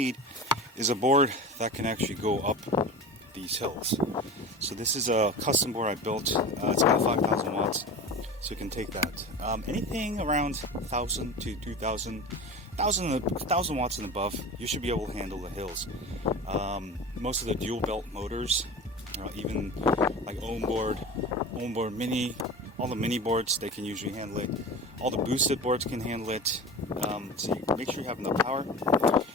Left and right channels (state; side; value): normal; both; correlation 0.32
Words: is a board that can actually go up these hills. So this is a custom board I built. It's got 5,000 watts, so you can take that. Anything around 1,000 to 2,000, 1,000 watts and above, you should be able to handle the hills. Most of the dual belt motors, even like onboard mini, all the mini boards, they can usually handle it. All the boosted boards can handle it. So you make sure you have enough power.